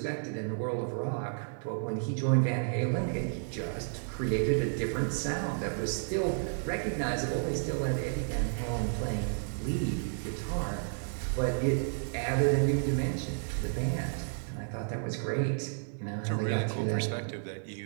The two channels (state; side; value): silent; left; digital silence